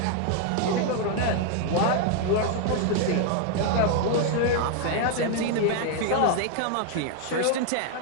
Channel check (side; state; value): both; different; correlation 0.00